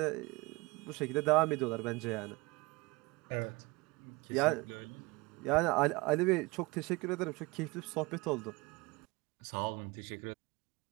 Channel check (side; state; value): left; quieter; 24.3 dB